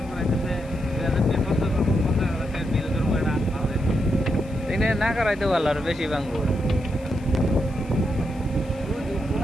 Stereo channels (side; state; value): left; noise; hiss, 27 dB below the sound